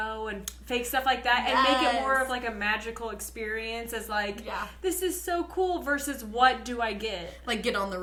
and fake stuff like that and make it more of, like, a magical experience as, like, this is so cool versus what do I get? Like, get on the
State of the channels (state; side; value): identical; both; correlation 1.00